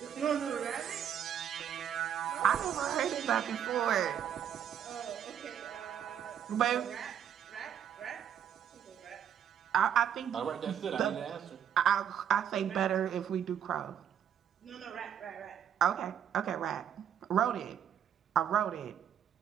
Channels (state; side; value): quieter; left; 9.1 dB